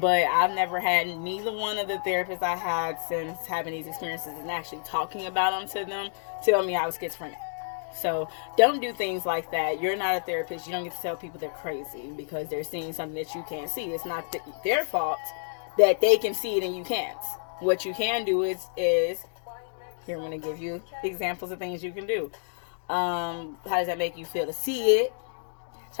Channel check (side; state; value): right; silent; digital silence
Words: I've never had neither one of the therapists I had since having these experiences and actually talking about them to them tell me I was schizophrenic. So don't do things like that. You're not a therapist. You don't get to tell people they're crazy because they're seeing something that you can't see. It's not their fault that they can see it and you can't. What you can do is here I'm going to give you examples of things you can do. How does that make you feel to see it?